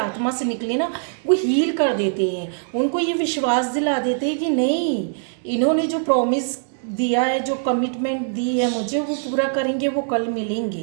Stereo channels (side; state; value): left; silent; digital silence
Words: से निकले ना, वो हील कर देते हैं, उनको ये विश्वास दिला देते हैं कि नहीं, इन्होंने जो प्रॉमिस दिया है, जो कमिटमेंट दी है मुझे, वो पूरा करेंगे, वो कल